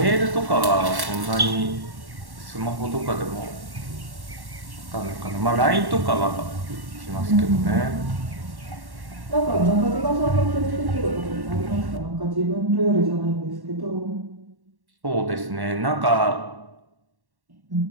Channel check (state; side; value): late; left; 1.1 ms